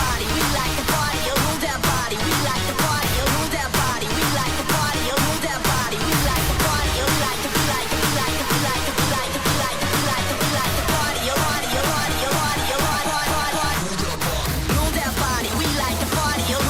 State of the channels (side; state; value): both; identical; correlation 1.00